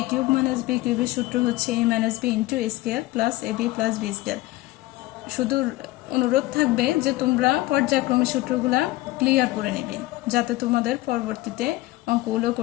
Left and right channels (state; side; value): quieter; right; 18.7 dB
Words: কিউব মাইনাস বি কিউবের সূত্র হচ্ছে a minus B into a square plus A b plus b square. শুধু অনুরোধ থাকবে যে তোমরা পর্যায়ক্রমে সূত্রগুলা ক্লিয়ার করে নেবে, যাতে তোমাদের পরবর্তীতে অঙ্কগুলো